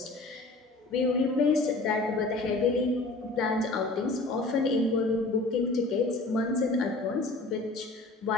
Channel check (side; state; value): right; quieter; 3.2 dB